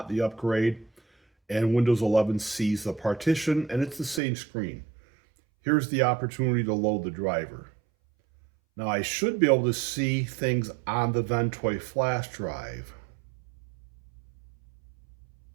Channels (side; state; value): left; drops out; at 4.2 s